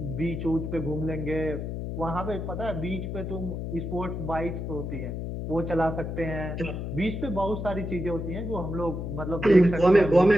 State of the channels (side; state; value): left; noise; hum, 5 dB below the sound